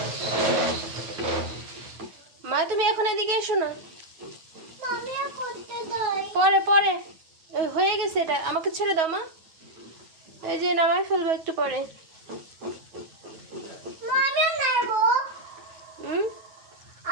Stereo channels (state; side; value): late; left; 9.3 ms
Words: মা তুমি এখন এদিকে এসো না। পরে পরে হয়ে গেছে, এটা আমাকে ছেড়ে দাও মা। এই যে নামাই ফেলবো একটু পরে।